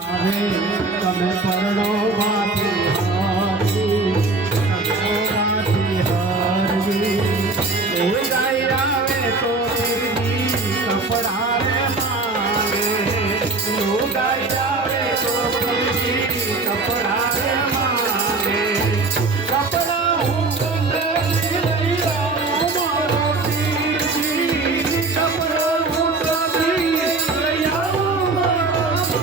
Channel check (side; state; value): left; quieter; 3.6 dB